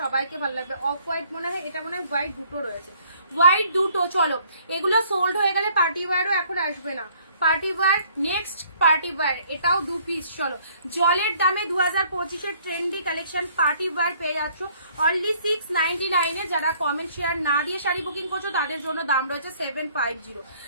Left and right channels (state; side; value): inverted; both; correlation -0.61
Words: সবাইকে ভালো লাগবে। অফ হোয়াইট মনে হয়, এটা মনে হয় হোয়াইট দুটো রয়েছে, হোয়াইট দুটো। চলো এগুলো সোল্ড হয়ে গেলে পার্টি ওয়্যারও এখন আসবে না। Party wear, next party wear, এটাও 2 পিস। চলো জলের দামে 2025-এর ট্রেন্ডি কালেকশন পার্টি ওয়্যার পেয়ে যাচ্ছ অনলি 699-এ। যারা কমেন্ট শেয়ার না দিয়ে শাড়ি বুকিং করছো তাদের জন্য দাম রয়েছে 750,